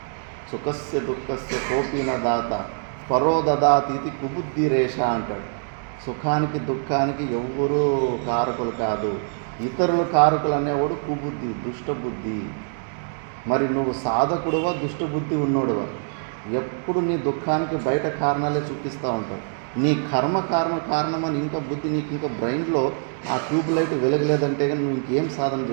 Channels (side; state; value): left; silent; 62 dB below the other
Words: సుఖస్య దుఃఖస్య కోపిన దాత పరో దదాతీతి కుబుద్ధి రేష అంటాడు. సుఖానికి దుఃఖానికి ఎవ్వరూ కారకులు కాదు, ఇతరుల కారకులు అనేవాడు కుబుద్ధి, దుష్టబుద్ధి. మరి నువ్వు సాధకుడువా, దుష్టబుద్ధి ఉన్నోడువా? ఎప్పుడు నీ దుఃఖానికి బయట కారణాలే చూపిస్తూ ఉంటావు. నీ కారణమని ఇంకా బుద్ధి నీకు ఇంకా బ్రెయిన్లో ఆ ట్యూబ్ లైట్ వెలగలేదంటే కానీ నువ్వు ఇంకేం సాధన